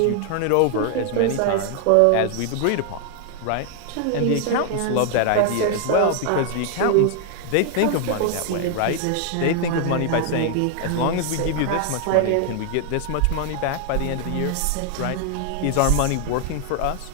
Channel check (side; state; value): both; different; correlation 0.00